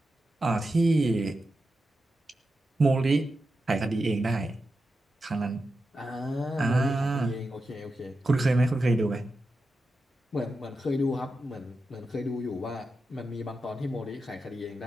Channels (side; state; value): both; normal; correlation 0.90